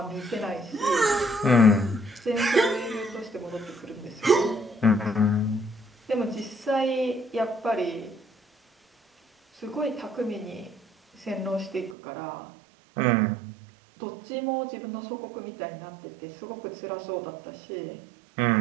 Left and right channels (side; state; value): left; drops out; at 12.0 s